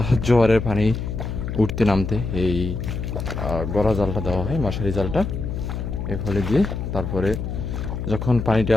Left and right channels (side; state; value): left; noise; hum, 4 dB below the sound